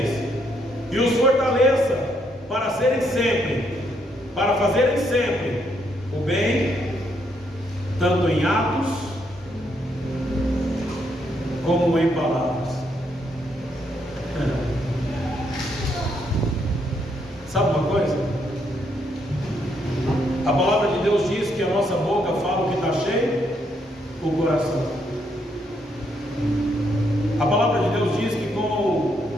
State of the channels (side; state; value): both; normal; correlation 0.74